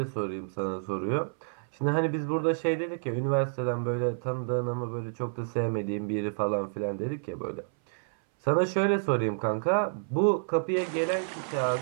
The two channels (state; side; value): silent; left; 58 dB below the other